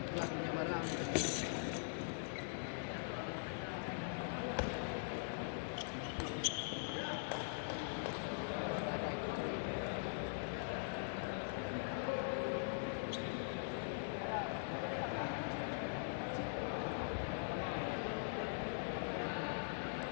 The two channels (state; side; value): silent; right; digital silence